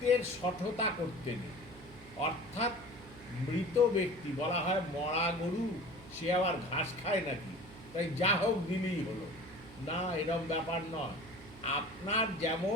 শঠতা করতে নেই, অর্থাৎ মৃত ব্যক্তি, বলা হয় মরা গরু সে আবার ঘাস খায় নাকি, তাই যা হোক দিলেই হলো না, এরকম ব্যাপার নয়। আপনার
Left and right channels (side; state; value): right; noise; hum, 19 dB below the sound